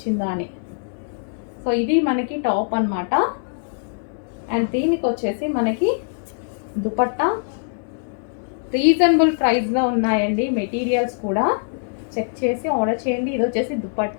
అని. సో ఇది మనకి టాప్ అనమాట. అండ్ దీనికి వచ్చేసి మనకి దుపట్టా రీజనబుల్ ప్రైస్లో ఉన్నాయండి మెటీరియల్స్ కూడా. చెక్ చేసి ఆర్డర్ చేయండి. ఇది వచ్చేసి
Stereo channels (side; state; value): right; silent; digital silence